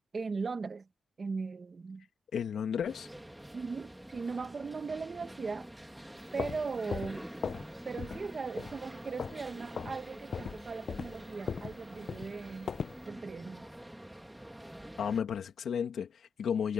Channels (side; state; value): both; normal; correlation 0.83